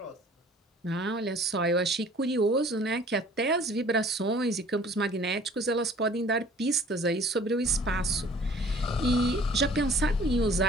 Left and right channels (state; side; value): normal; both; correlation 0.52